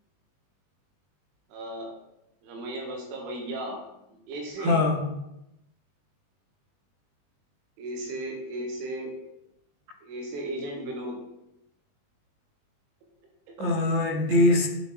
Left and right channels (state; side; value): late; left; 21 ms